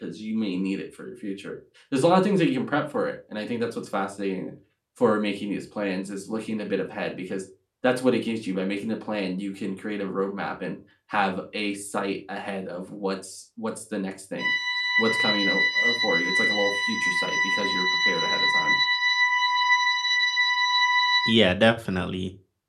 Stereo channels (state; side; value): identical; both; correlation 1.00